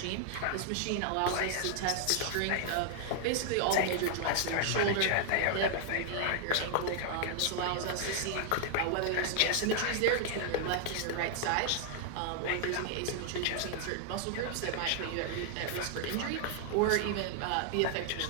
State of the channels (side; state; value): both; different; correlation 0.00